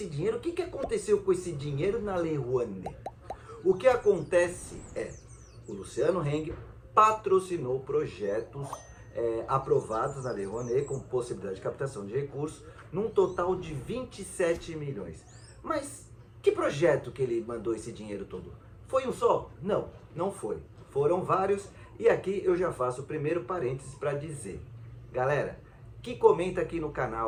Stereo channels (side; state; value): both; identical; correlation 1.00